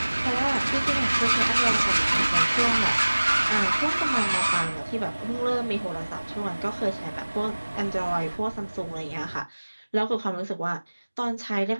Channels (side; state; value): both; inverted; correlation -1.00